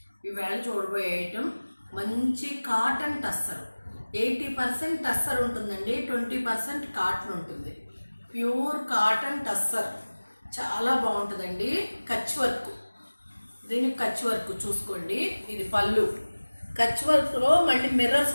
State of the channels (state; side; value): inverted; both; correlation -1.00